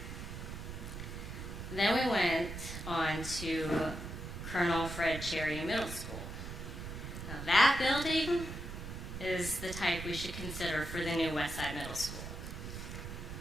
Then we went on to Colonel Fred Cherry Middle School. Now that building is the type we should consider for the new West Side Middle School.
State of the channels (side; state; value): right; noise; rumble, 8 dB below the sound